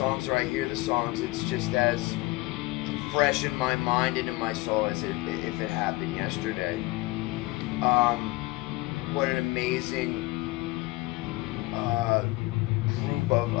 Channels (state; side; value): quieter; right; 21.0 dB